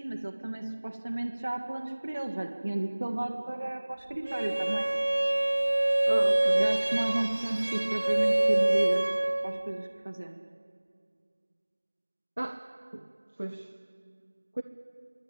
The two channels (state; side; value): inverted; both; correlation -1.00